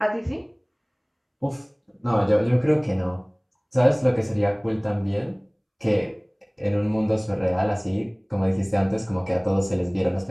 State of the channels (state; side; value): identical; both; correlation 1.00